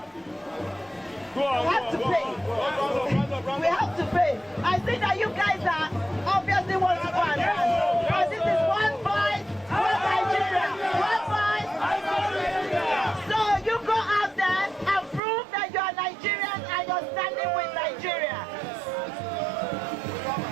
we have to pay. We have to pay. I think that you guys are obviously want to go and run. But this is one voice, one Nigeria, one voice. So you go out there and prove that you are Nigerian and you're standing with Nigeria.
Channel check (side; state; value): left; drops out; at 15.2 s